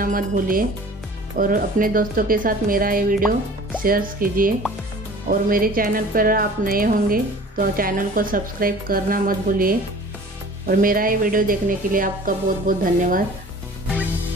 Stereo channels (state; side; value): normal; both; correlation 0.45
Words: मत भूलिए और अपने दोस्तों के साथ मेरा ये वीडियो शेयर कीजिए। और मेरे चैनल पर आप नए होंगे तो चैनल को सब्सक्राइब करना मत भूलिए। और मेरा ये वीडियो देखने के लिए आपका बहुत बहुत धन्यवाद।